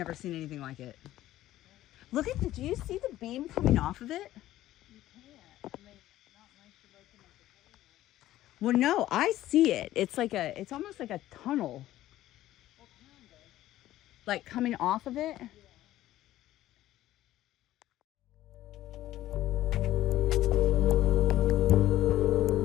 seen anything like it. Look at do you see the beam coming off of it? You can't. I mean, not unless you're looking at the camera. Well, no, I see it. It's like it's almost like a tunnel. What kind of? Like coming off of it? Yeah.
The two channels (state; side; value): quieter; right; 14.3 dB